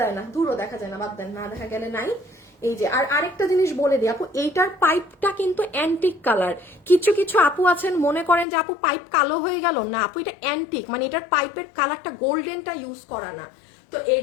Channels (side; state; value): right; drops out; at 8.5 s